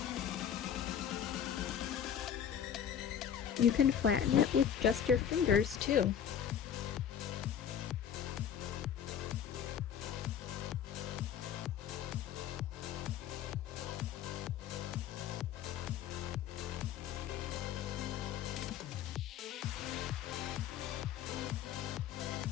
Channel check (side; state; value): right; quieter; 8.9 dB